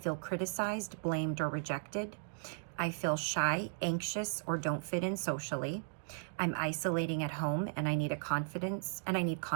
criticized, blamed, or rejected. I feel shy, anxious, or don't fit in socially. I'm isolating at home and I need confidence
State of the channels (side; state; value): left; silent; digital silence